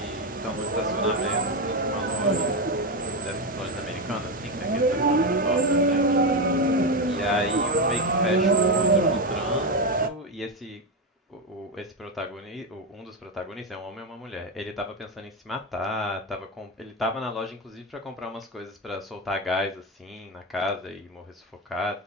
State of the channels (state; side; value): normal; both; correlation 0.11